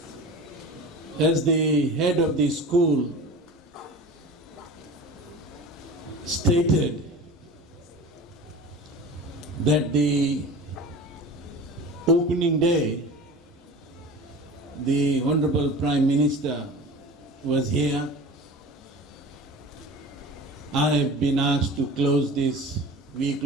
As the head of the school stated that the opening day, the Honorable Prime Minister was here. I have been asked to close this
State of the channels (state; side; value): normal; both; correlation 0.36